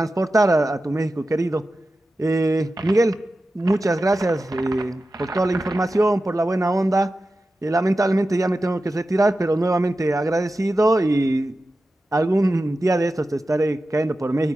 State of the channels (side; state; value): both; normal; correlation 0.93